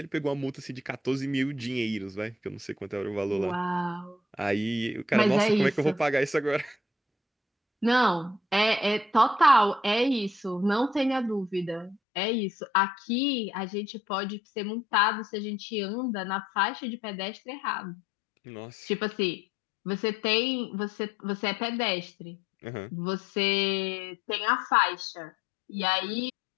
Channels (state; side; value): drops out; right; at 12.0 s